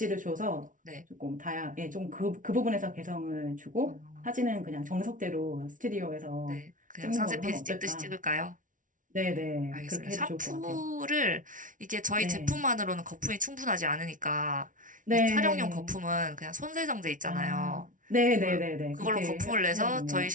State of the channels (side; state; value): left; late; 0.38 ms